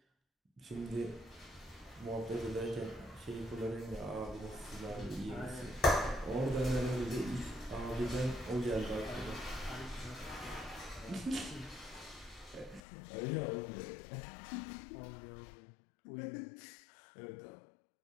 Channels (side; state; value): right; drops out; at 12.8 s